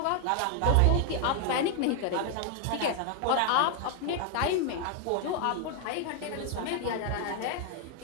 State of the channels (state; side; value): different; both; correlation 0.00